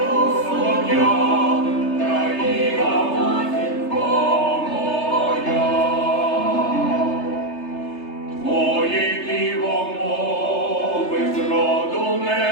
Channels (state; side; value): late; right; 3.3 ms